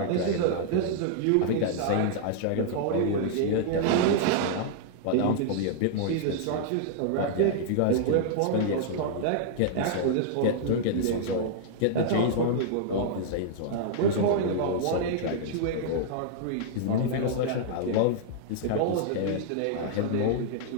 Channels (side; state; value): both; different; correlation -0.01